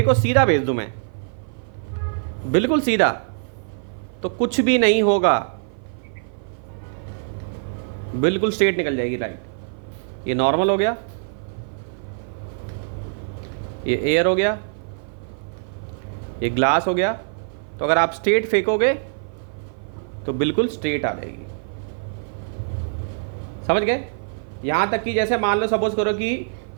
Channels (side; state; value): left; silent; 55 dB below the other